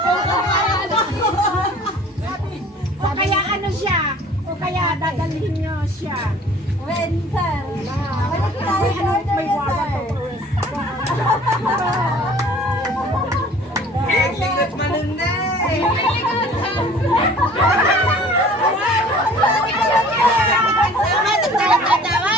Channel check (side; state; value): both; normal; correlation 0.49